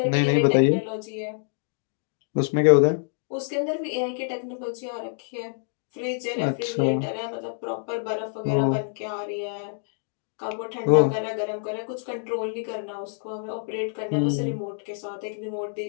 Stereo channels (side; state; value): right; silent; digital silence